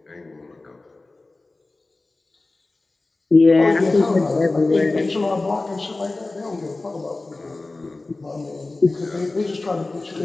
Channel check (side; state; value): right; quieter; 3.2 dB